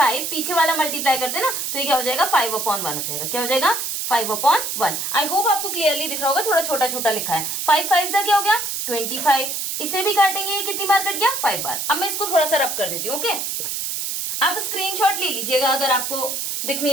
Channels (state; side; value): noise; right; hiss, 3 dB below the sound